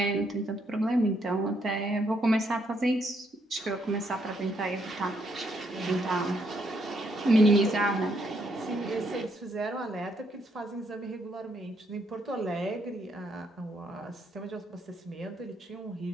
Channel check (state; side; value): normal; both; correlation 0.74